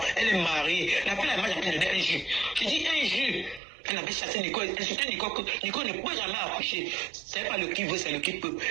Elle est mariée. La fille là, moi, j'ai donné un jus. Je dis un jus. Elle avait chassé Nicole, insulté Nicole, que Nicole ne peut jamais accoucher. C'est pas le qui veut, c'est le qui peut.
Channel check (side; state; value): left; drops out; at 3.6 s